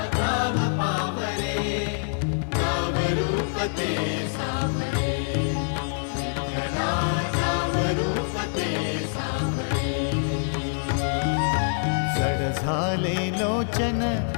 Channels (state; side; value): silent; right; digital silence